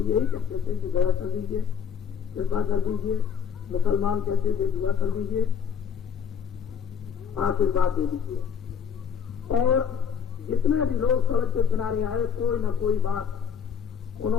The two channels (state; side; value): quieter; right; 7.0 dB